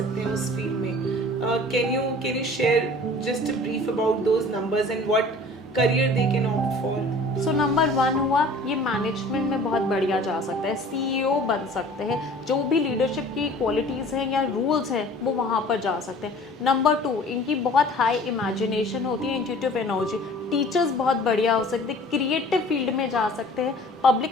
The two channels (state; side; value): normal; both; correlation 0.47